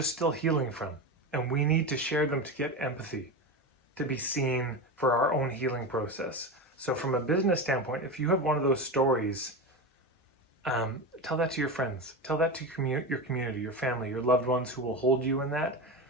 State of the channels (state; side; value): normal; both; correlation 0.21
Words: still healing from, and we need to share them to get empathy, to be seen for our own healing process. So from a business standpoint, if you have one of those stories, tell that to your friends, tell that to your community, your family, your loved ones who will hold you in that.